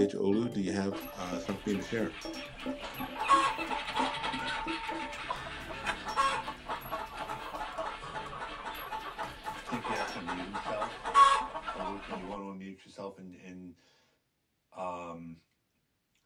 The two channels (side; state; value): both; identical; correlation 1.00